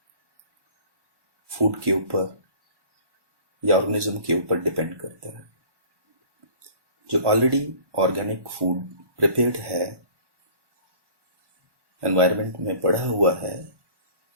फूड के ऊपर या ऑर्गेनिज्म के ऊपर डिपेंड करता है. जो ऑलरेडी ऑर्गेनिक फूड प्रिपेयर्ड है, एनवायरनमेंट में पड़ा हुआ है,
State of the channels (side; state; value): left; late; 1.1 ms